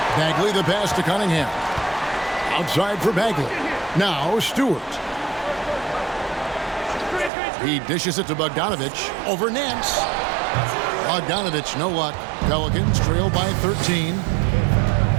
Bagley the pass to Cunningham. Outside for Bagley. Now Stewart. He dishes it to Bogdanovich over Nance. Bogdanovich, no luck. Pelicans trail by 13.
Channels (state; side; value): drops out; left; at 7.3 s